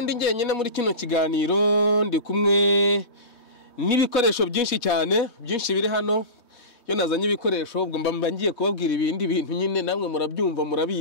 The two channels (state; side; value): late; right; 3.2 ms